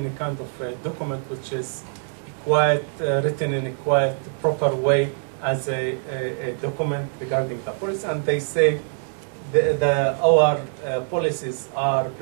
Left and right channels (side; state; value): left; silent; 63 dB below the other